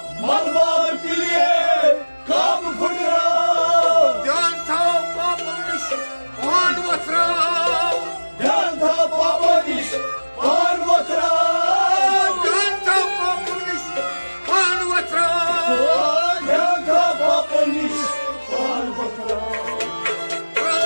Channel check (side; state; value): both; inverted; correlation -1.00